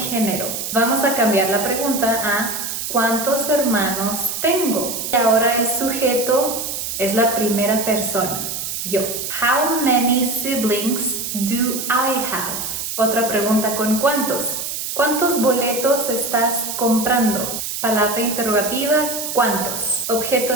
Vamos a cambiar la pregunta a ¿cuántos hermanos tengo? Y ahora el sujeto es la primera persona, yo. How many siblings do I have? Otra pregunta con ¿cuántos? ¿Cuántos boletos estás comprando? Palabra interrogativa, ¿cuántos? Objeto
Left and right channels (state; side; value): noise; right; hiss, 4 dB below the sound